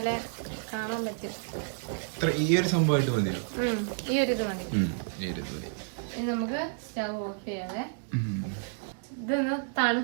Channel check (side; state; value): left; silent; digital silence